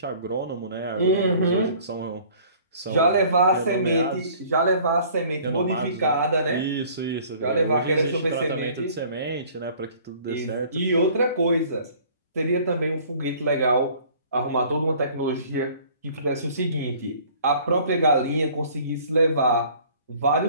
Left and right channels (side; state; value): both; inverted; correlation -0.52